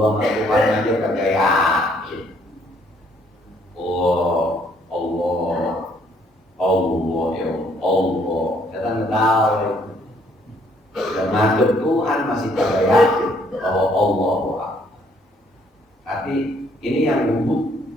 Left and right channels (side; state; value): both; normal; correlation 0.66